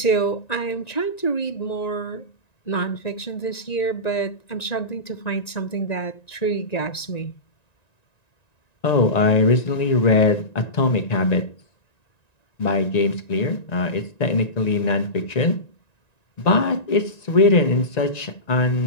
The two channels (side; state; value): right; late; 1.9 ms